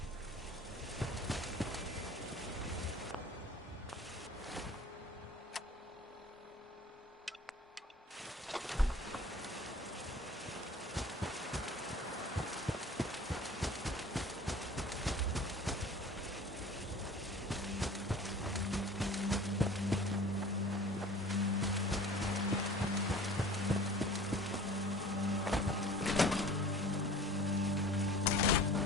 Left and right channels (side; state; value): both; normal; correlation 0.44